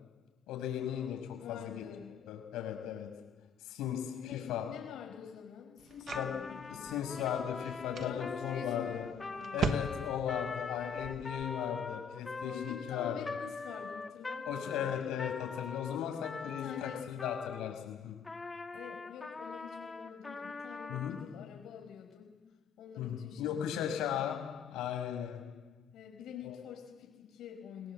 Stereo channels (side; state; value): right; quieter; 6.1 dB